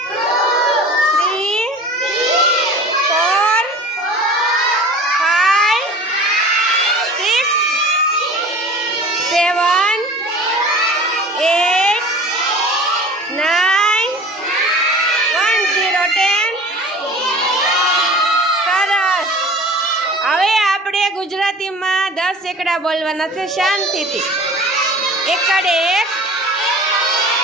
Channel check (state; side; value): normal; both; correlation 0.41